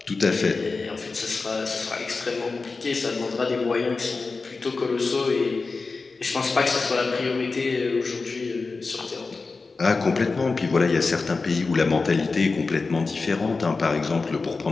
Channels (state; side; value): quieter; right; 4.1 dB